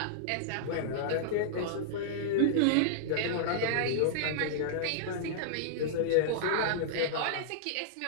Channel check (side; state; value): both; different; correlation -0.02